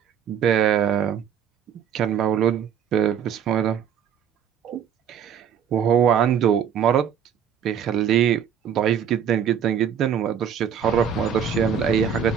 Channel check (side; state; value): left; quieter; 8.2 dB